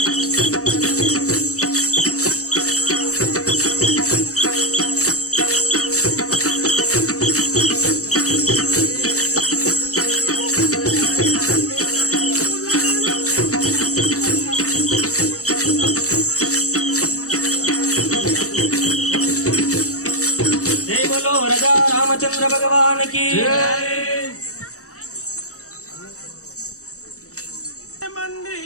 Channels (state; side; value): late; right; 0.65 ms